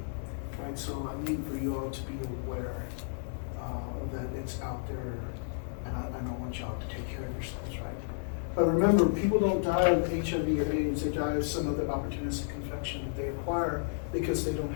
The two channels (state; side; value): silent; right; 56 dB below the other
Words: Right, so I need for you all to be aware that it's out there, and I don't want y'all to take care of yourselves, right? But remember, people don't die of HIV or AIDS; they die of some other opportunistic infection that they acquire because they don't